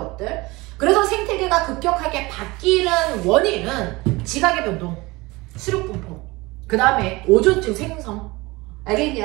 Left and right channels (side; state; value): left; quieter; 22.5 dB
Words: 그래서 생태계가 급격하게 바뀌는 원인은 지각의 변동, 수륙 분포, 그 다음에 오존층 생성.